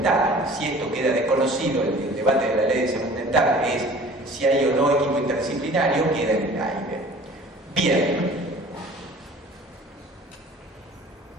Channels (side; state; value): both; normal; correlation 0.47